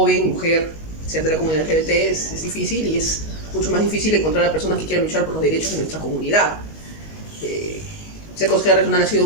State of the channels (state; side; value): late; right; 19 ms